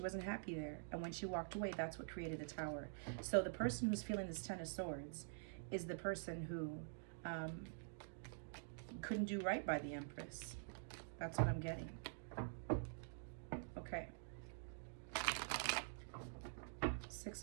wasn't happy there. And when she walked away, that's what created the Tower. So the person who's feeling this 10 of Swords is the person who couldn't do right by the Empress. That's what I'm getting. Okay.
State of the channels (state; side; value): silent; left; digital silence